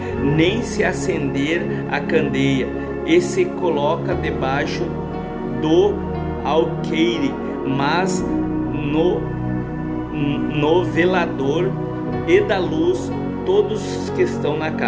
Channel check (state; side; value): identical; both; correlation 1.00